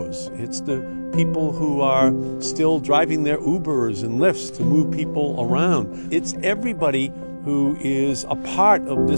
It's the people who are still driving their Ubers and Lyfts to move people around. It's everybody who is a part of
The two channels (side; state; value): both; inverted; correlation -1.00